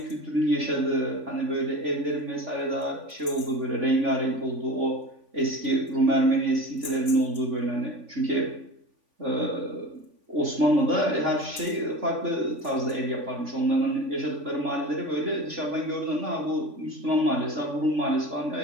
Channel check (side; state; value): left; late; 3.5 ms